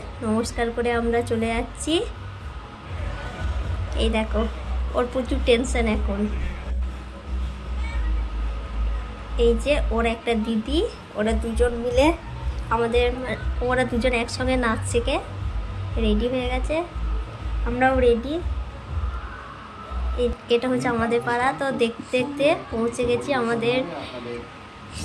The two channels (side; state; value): both; identical; correlation 1.00